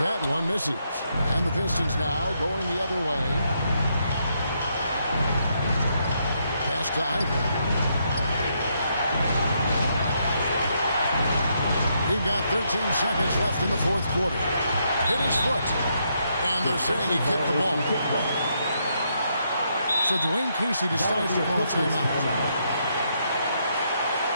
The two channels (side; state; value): both; inverted; correlation -0.77